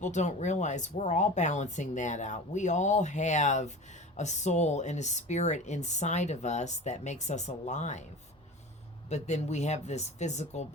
don't realize we're all balancing that out. We all have a soul and a spirit inside of us that makes us alive. But then we have this physical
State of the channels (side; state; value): both; normal; correlation 0.34